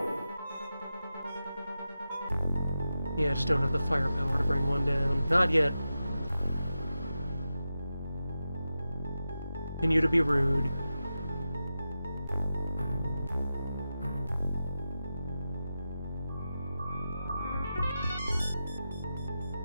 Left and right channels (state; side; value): inverted; both; correlation -0.91